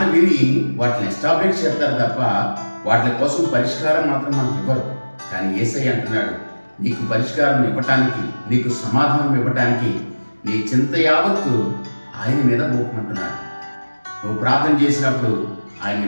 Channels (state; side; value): inverted; both; correlation -1.00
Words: విని వాటిని ఎస్టాబ్లిష్ చేస్తారు తప్ప వాటి కోసం పరిష్కారం మాత్రం మనకు ఇవ్వరు. కానీ యేసయ్య అంటున్నాడు, నీకు పరిష్కారం ఇవ్వటానికి, నీకు సమాధానం ఇవ్వటానికి నీ చింత యావత్తు ఆయన మీద మోపమంటున్నాడు. నువ్వు ప్రార్థన చేసినప్పుడు